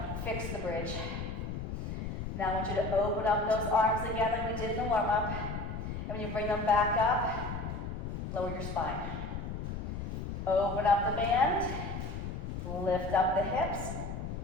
Fix the bridge. Now I want you to open up those arms again like we did in the warm-up. And when you bring them back up, lower your spine. Open up the band, lift up the hips,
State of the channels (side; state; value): left; noise; rumble, 5 dB below the sound